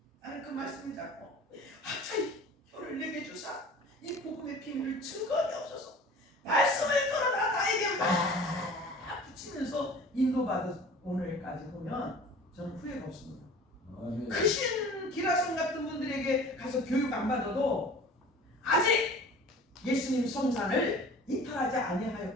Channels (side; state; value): both; normal; correlation 0.44